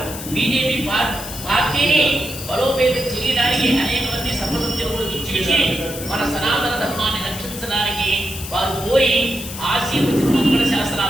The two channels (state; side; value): noise; left; hiss, 10 dB below the sound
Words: బీజేపీ పార్టీని బలోపేతం చేయడానికి అనేక మంది సర్వసభ్యులు ఇచ్చేసి మన సనాతన ధర్మాన్ని రక్షించడానికి వారు పోయి ఆశీర్వచన మంగళ